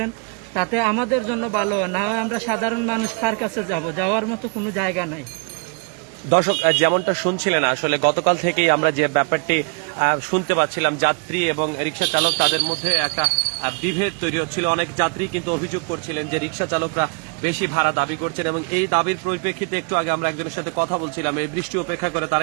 তাতে আমাদের জন্য ভালো হয়। না হয় আমরা সাধারণ মানুষ কার কাছে যাব? যাওয়ার মতো কোনো জায়গা নাই। দর্শক যেমনটা শুনছিলেন আসলে গতকাল থেকেই আমরা যে ব্যাপারটি শুনতে পাচ্ছিলাম, যাত্রী এবং রিক্সা চালক তাদের মধ্যে একটা বিভেদ তৈরি হচ্ছিল। অনেক যাত্রী কিন্তু অভিযোগ করছিলেন যে রিক্সা চালকরা বেশি ভাড়া দাবি করছেন এবং এই দাবির পরিপ্রেক্ষিতে একটু আগে আমরা একজনের সাথে কথা বলছিলাম, এই বৃষ্টি উপেক্ষা করে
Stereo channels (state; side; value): quieter; left; 33.5 dB